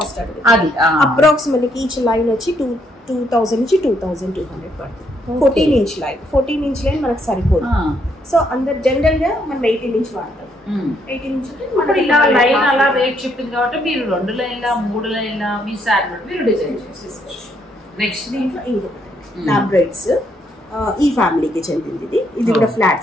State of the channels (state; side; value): normal; both; correlation 0.73